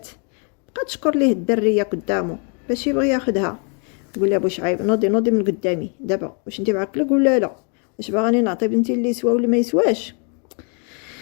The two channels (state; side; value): quieter; right; 39.3 dB